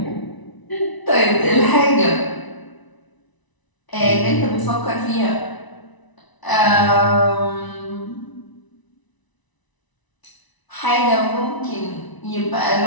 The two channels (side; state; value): right; late; 1.0 ms